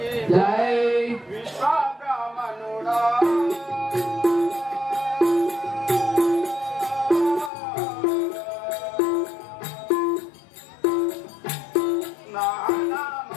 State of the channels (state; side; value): drops out; right; at 7.5 s